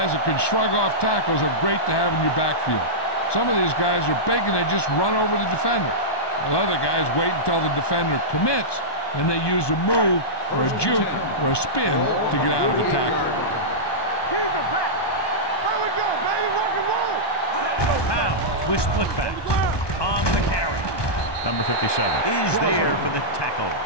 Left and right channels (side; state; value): right; late; 1.2 ms